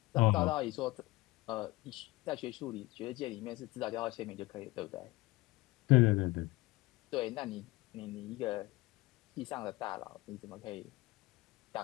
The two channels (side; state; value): right; quieter; 20.8 dB